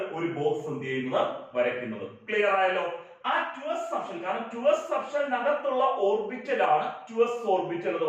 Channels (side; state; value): both; identical; correlation 1.00